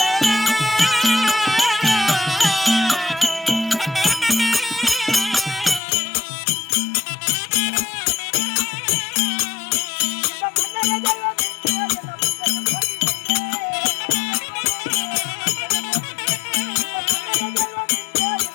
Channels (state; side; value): drops out; right; at 5.8 s